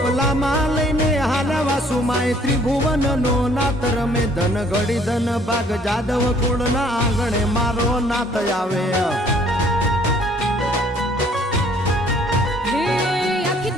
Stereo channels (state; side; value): normal; both; correlation 0.60